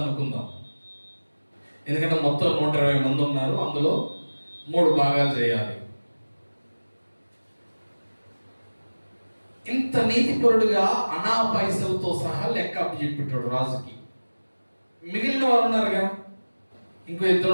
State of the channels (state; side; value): inverted; both; correlation -1.00